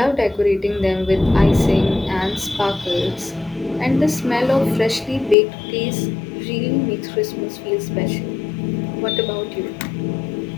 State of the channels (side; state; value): right; drops out; at 5.4 s